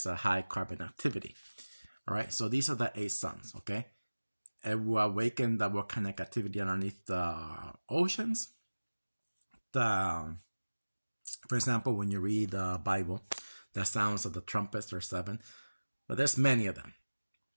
of high carbon activity. All right, so these are the 8 suns, okay? It will awaken the volcanic activity underneath the oceans. For example, when you read the Bible, the sounds of the trumpets, there are 7, but there's many of them.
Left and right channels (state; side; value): inverted; both; correlation -1.00